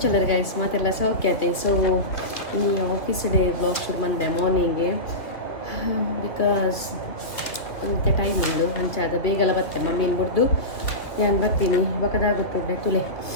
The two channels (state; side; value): late; right; 2.7 ms